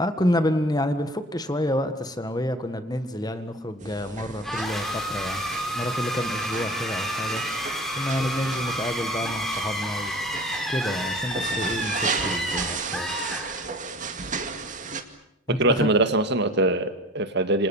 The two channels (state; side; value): normal; both; correlation 0.43